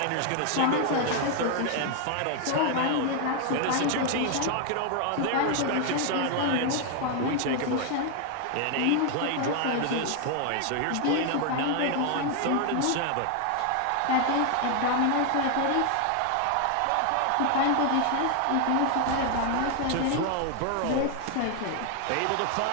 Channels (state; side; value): different; both; correlation 0.00